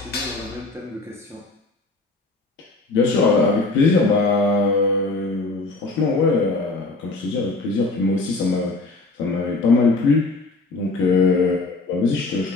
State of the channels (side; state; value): right; quieter; 3.4 dB